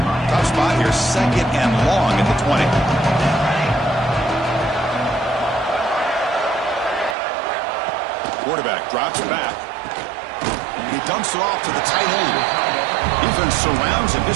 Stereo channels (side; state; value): left; drops out; at 7.2 s